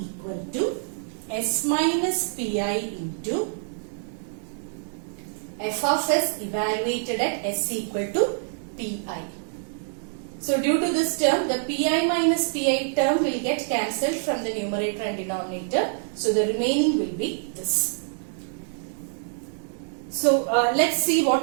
to S minus Pi into f of s evaluated at s equal to Pi. So due to this term, the Pi minus Pi term will get cancelled from the numerator and denominator. So the remaining will be this. So let's see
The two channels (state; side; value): silent; left; digital silence